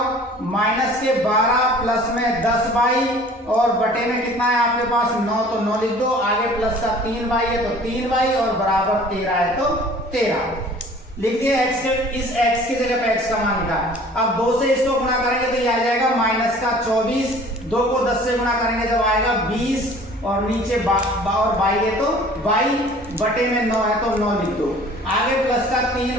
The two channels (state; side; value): normal; both; correlation 0.49